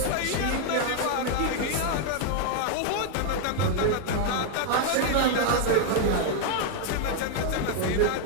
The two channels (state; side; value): different; both; correlation 0.00